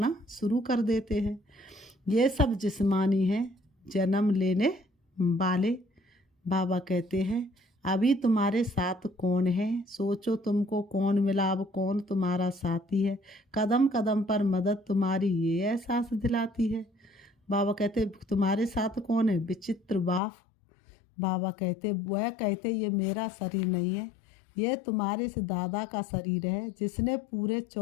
शुरू कर देते हैं। ये सब जिस्मानी है, जन्म लेने वाले। बाबा कहते हैं अभी तुम्हारे साथ कौन है? सोचो तुमको कौन मिला, अब कौन तुम्हारा साथी है? कदम कदम पर मदद तुम्हारी ये एहसास दिलाती है। बाबा कहते तुम्हारे साथ कौन है? विचित्र बाप। बाबा कहते वह कहते ये मेरा शरीर नहीं है, ये तुम्हारे से दादा का शरीर है जिसने पूरे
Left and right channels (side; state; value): right; drops out; at 20.2 s